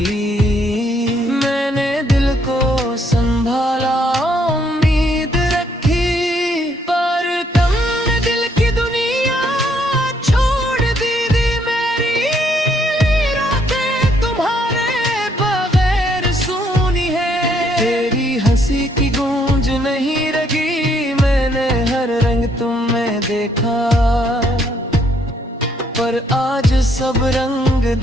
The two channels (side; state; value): both; normal; correlation 0.70